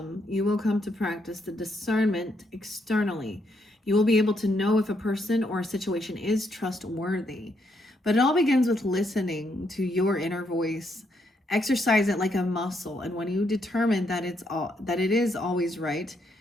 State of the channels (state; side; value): normal; both; correlation 0.76